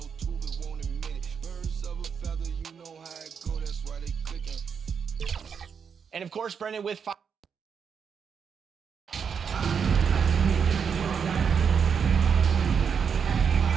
too, but won't admit it. Birds of a feather, you know how it go, that's why they clicking. And of course, Brendan, with five.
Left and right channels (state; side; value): quieter; left; 6.7 dB